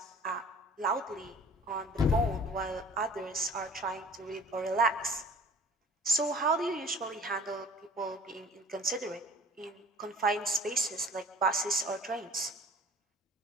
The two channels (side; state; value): both; normal; correlation 0.48